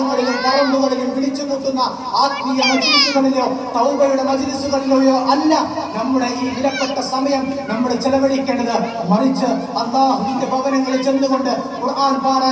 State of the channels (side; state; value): both; identical; correlation 1.00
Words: പറമ്പുകളിലും വിളിച്ചുകൂട്ടുന്ന ആത്മീയ മജ്‌ലിസുകളിലോ തൗബയുടെ മജ്‌ലിസുകളിലോ അല്ല നമ്മുടെ ഈ വിലപ്പെട്ട സമയം നമ്മൾ ചെലവഴിക്കേണ്ടത്. മറിച്ച് അല്ലാഹുവിന്റെ ഭവനങ്ങളിൽ ചെന്നുകൊണ്ട് ഖുർആൻ